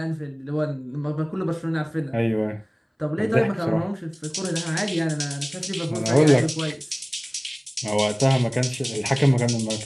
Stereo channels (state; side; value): identical; both; correlation 1.00